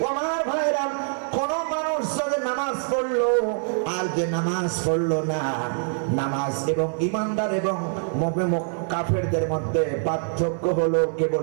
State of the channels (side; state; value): left; silent; 62 dB below the other